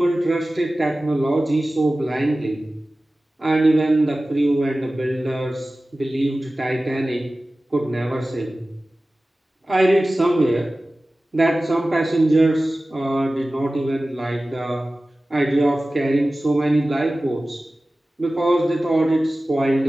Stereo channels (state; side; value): normal; both; correlation 0.96